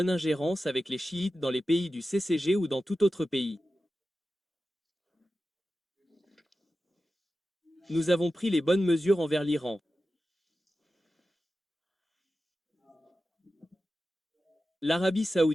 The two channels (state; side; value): normal; both; correlation 0.93